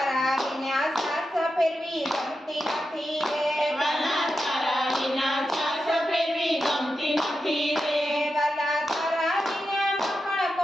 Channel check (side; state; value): both; normal; correlation 0.89